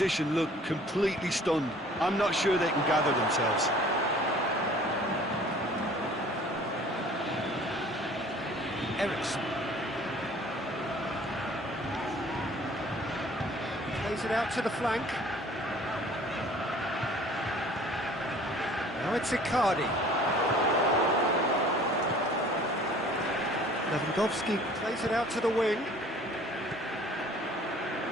looked completely stunned. I'm not sure they can gather themselves. Eriksen. Plays it out to the flank. Now it's Icardi. Lewandowski plays it out to the wing.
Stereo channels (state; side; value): normal; both; correlation 0.51